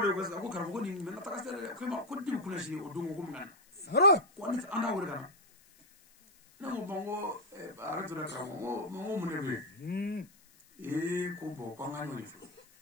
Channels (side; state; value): left; noise; hiss, 27 dB below the sound